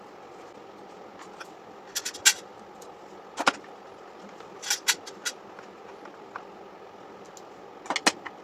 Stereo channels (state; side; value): identical; both; correlation 1.00